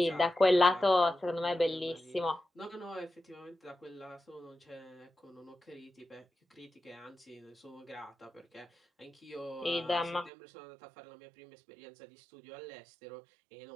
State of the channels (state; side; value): drops out; left; at 10.3 s